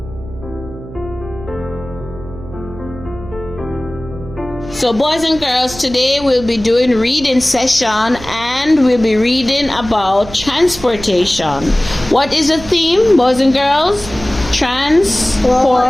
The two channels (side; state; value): right; noise; hum, 14 dB below the sound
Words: So boys and girls, today we'll be doing reading session and we'll be reading about transportation. What is the theme, boys and girls?